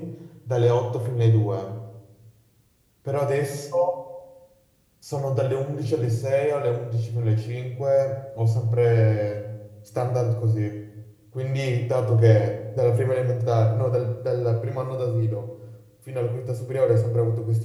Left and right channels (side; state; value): both; identical; correlation 1.00